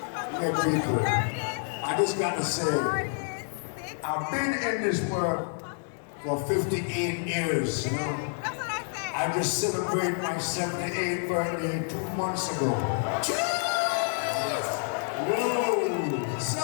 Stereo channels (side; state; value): right; silent; 59 dB below the other